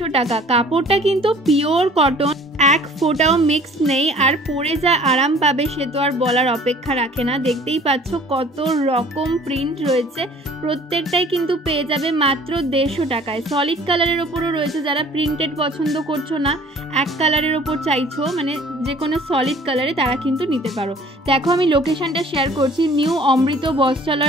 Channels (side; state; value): both; normal; correlation 0.51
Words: টাকা। কাপড়টা কিন্তু পিওর কটন, এক ফোঁটাও মিক্স নেই। আর পরে যা আরাম পাবে সে তো আর বলার অপেক্ষা রাখে না। দেখতেই পাচ্ছ কত রকম প্রিন্ট রয়েছে, প্রত্যেকটাই কিন্তু পেয়ে যাবে মাত্র 150 টাকায়। সলিড কালারের ওপরও রয়েছে, যারা প্রিন্টেড পছন্দ করছো না, এক কালারের ওপর চাইছো, মানে যে কোনো সলিড কালারে, তারা কিন্তু নিতে পারো। দেখো আমি লোকেশনটা শেয়ার করছি। নিউ অমৃত